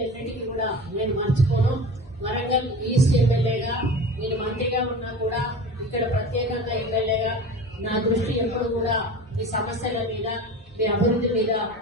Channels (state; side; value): normal; both; correlation 0.34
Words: కూడా నేను మర్చిపోను. వరంగల్ ఈస్ట్ ఎమ్మెల్యేగా నేను మంత్రిగా ఉన్నా కూడా ఇక్కడ ప్రత్యేకంగా ఎమ్మెల్యేగా నా దృష్టి ఎప్పుడు కూడా మీ సమస్యల మీద, మీ అభివృద్ధి మీద